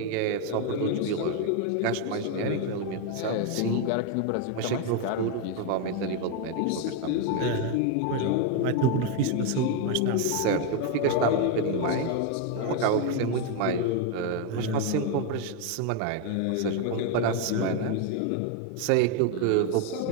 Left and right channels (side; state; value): both; different; correlation 0.01